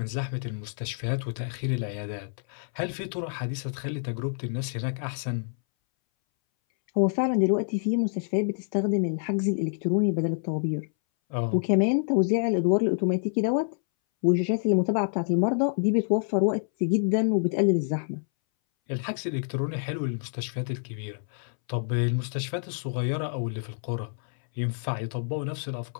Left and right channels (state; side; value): silent; right; 60 dB below the other